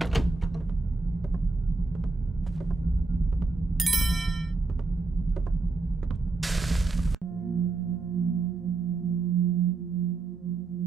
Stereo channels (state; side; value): quieter; left; 3.7 dB